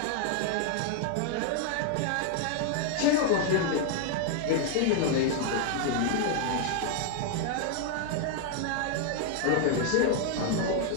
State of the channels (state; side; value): different; both; correlation 0.00